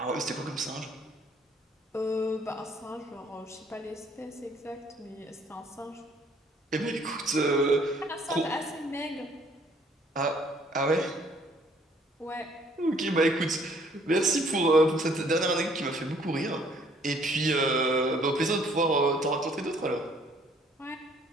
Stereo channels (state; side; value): normal; both; correlation 0.61